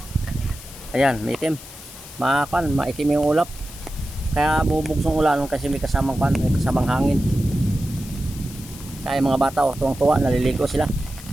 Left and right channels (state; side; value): noise; left; hiss, 16 dB below the sound